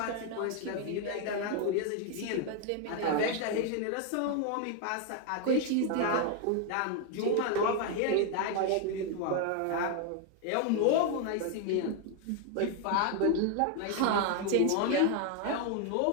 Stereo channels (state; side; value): different; both; correlation 0.01